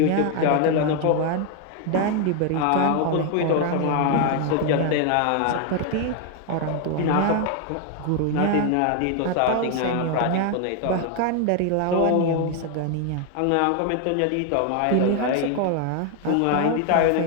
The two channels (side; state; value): both; different; correlation 0.01